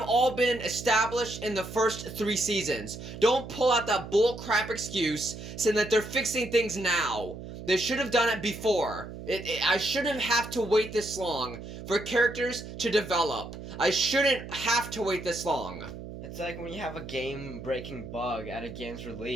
all been established in the first 3 seasons. Don't pull out that bullcrap excuse saying that they're fixing things now. They should have done it before. I shouldn't have to wait this long for characters to develop. I shouldn't have to wait this long. It's like when you have a game-breaking bug at a game's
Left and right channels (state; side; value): noise; right; hum, 11 dB below the sound